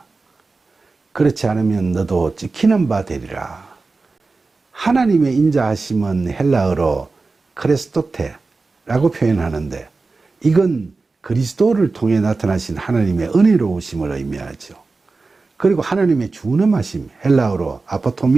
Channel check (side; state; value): left; quieter; 3.8 dB